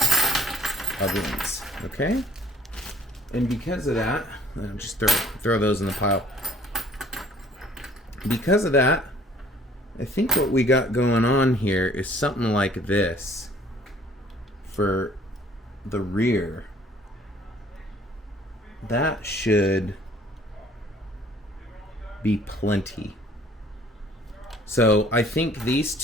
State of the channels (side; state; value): both; normal; correlation 0.55